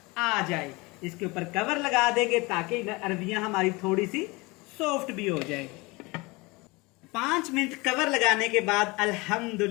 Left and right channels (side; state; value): right; quieter; 24.8 dB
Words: आ जाए। इसके ऊपर कवर लगा देंगे ताकि अरबियां हमारी थोड़ी सी सॉफ्ट भी हो जाए। 5 मिनट कवर लगाने के बाद